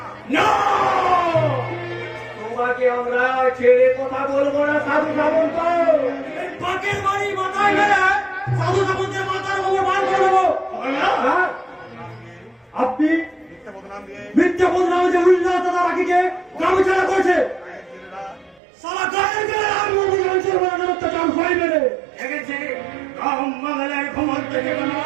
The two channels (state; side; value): drops out; left; at 18.6 s